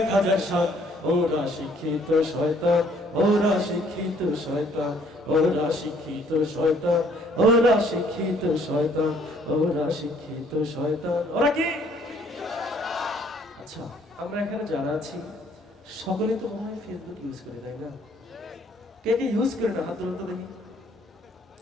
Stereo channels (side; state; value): both; normal; correlation 0.62